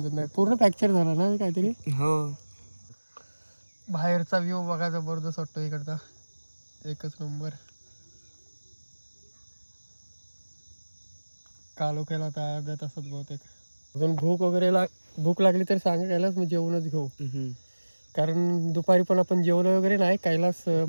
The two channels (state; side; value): inverted; both; correlation -1.00